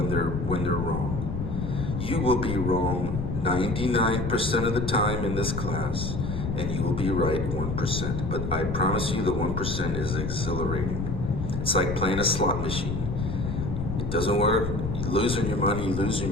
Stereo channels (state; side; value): noise; left; rumble, 4 dB below the sound